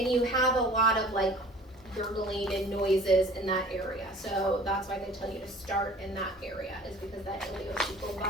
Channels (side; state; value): both; normal; correlation 0.47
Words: you have a lot of like gurgling and noises in that area. So that's why they tell you to start in that area, is because that ileocecal